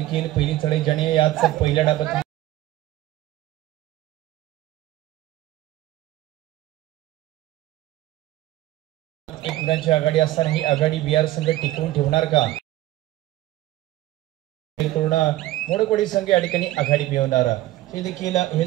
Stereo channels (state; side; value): quieter; left; 15.6 dB